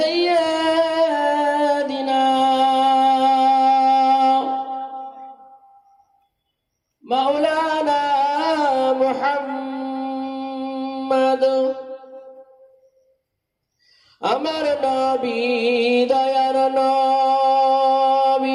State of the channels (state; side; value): identical; both; correlation 1.00